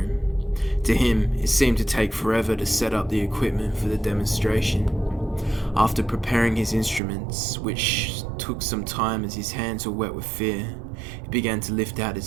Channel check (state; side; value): drops out; left; at 7.0 s